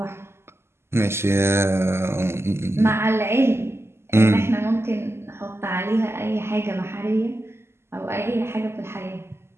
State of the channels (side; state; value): left; late; 0.12 ms